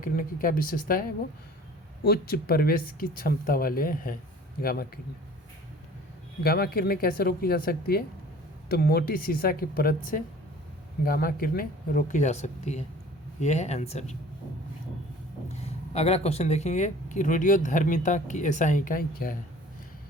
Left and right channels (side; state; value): both; normal; correlation 0.47